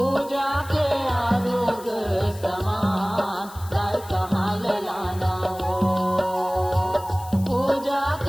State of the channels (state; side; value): noise; left; hiss, 19 dB below the sound